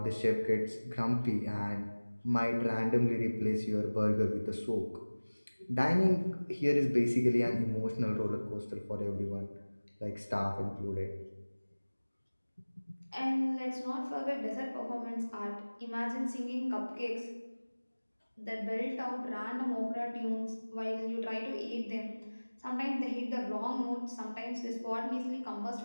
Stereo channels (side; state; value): both; inverted; correlation -1.00